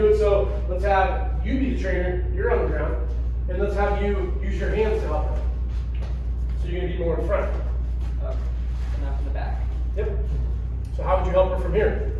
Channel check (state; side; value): identical; both; correlation 1.00